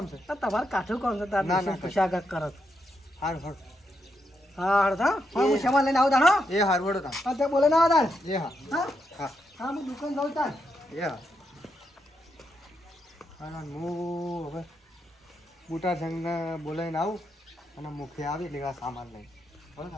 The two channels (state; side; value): normal; both; correlation 0.82